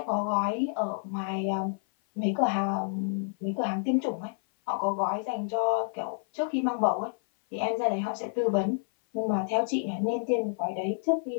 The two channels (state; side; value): silent; right; 57 dB below the other